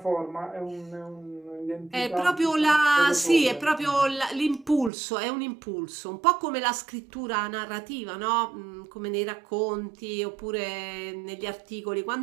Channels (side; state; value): left; drops out; at 4.9 s